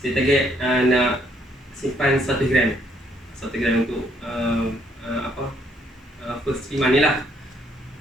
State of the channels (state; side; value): normal; both; correlation 0.69